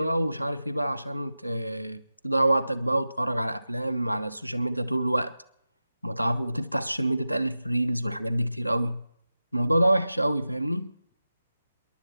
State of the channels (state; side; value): inverted; both; correlation -0.94